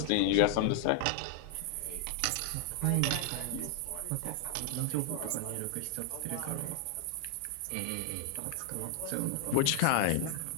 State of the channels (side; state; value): both; different; correlation 0.00